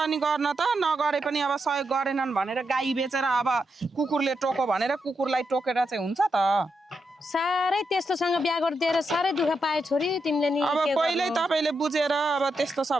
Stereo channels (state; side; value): normal; both; correlation 0.84